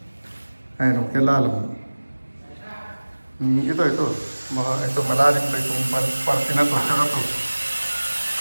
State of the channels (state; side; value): inverted; both; correlation -1.00